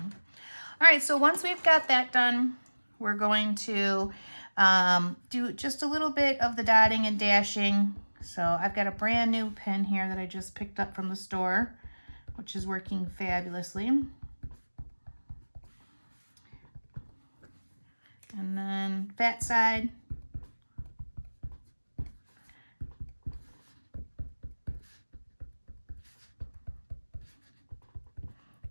All right, so once we've got that done, we're going to do just a little bit of the dotting and dashing. So I've got a brand new pen here that I just picked up from the store, which is working fabulously. And then fat side.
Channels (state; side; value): inverted; both; correlation -1.00